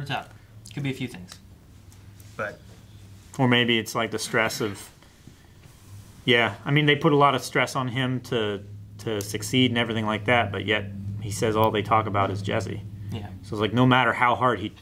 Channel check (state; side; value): identical; both; correlation 1.00